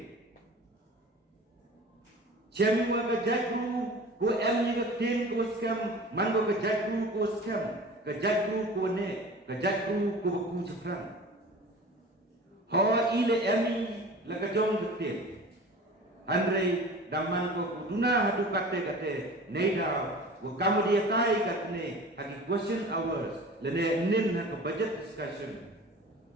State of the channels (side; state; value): both; normal; correlation 0.39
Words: Cemi wa kajatru ko em kaktin ko skam man ko kajatru ko skam kajatru ko ne kajatru ko ku chapran. Hawa ile emi la kajong kaktin. Andre damang ko duna hadu kate neida wa kamu dia tai katne hagi question hours lene nin ha budget discussion.